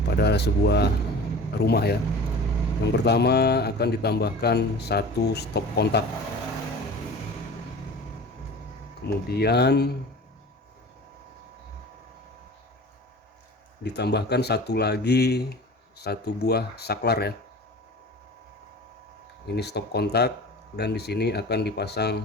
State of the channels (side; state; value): both; normal; correlation 0.38